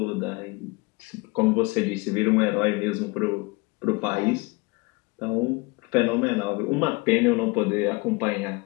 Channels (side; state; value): right; quieter; 26.2 dB